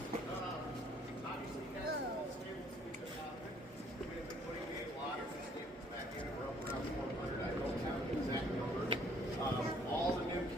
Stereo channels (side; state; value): both; normal; correlation 0.61